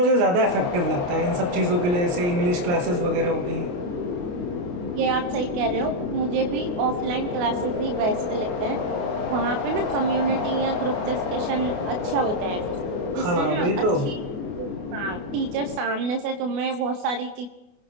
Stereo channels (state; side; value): late; left; 28 ms